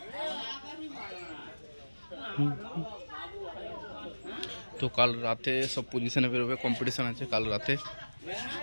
তো কাল রাতে সব পজিশনে বেরোবে, কম্পিটিশান আছে কাল রাতে।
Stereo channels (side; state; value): both; inverted; correlation -1.00